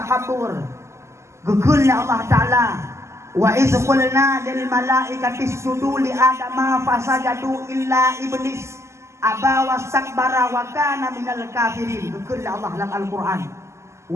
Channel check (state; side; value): late; left; 0.13 ms